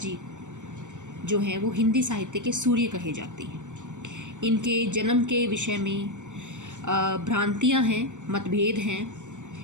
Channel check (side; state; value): left; late; 0.85 ms